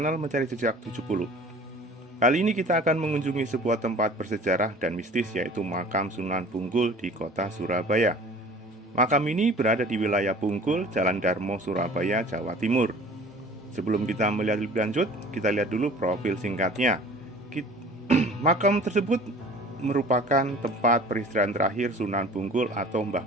Mencari Jejak 70. Kali ini kita akan mengunjungi sebuah tempat bersejarah dan mistis, yaitu makam Sunan Bungkul di kota Surabaya. Makam ini berada di wilayah Bungkul, Jalan Darmo, Surabaya, Jawa Timur. Sebelum kita melihat lebih lanjut, kita lihat dulu profil singkatnya. Makam tersebut merupakan tempat peristirahatan terakhir Sunan Bungkul atau Mbah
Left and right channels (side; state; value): both; normal; correlation 0.46